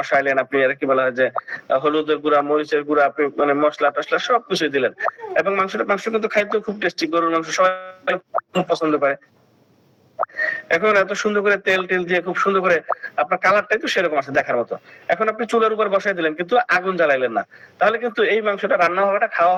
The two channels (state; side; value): identical; both; correlation 1.00